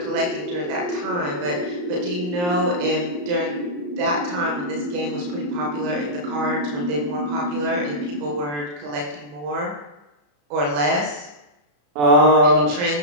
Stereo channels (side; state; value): left; late; 34 ms